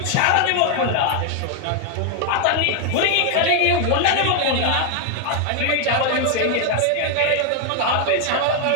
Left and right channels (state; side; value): different; both; correlation 0.00